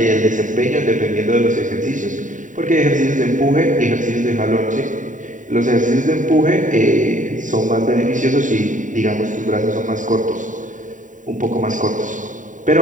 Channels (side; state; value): left; late; 0.37 ms